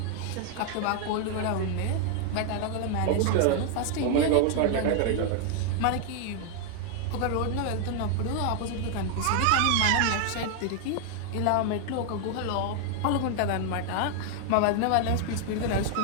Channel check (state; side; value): different; both; correlation 0.00